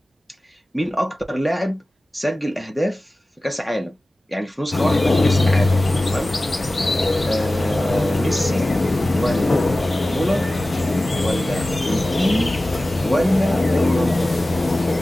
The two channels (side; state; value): both; normal; correlation 0.96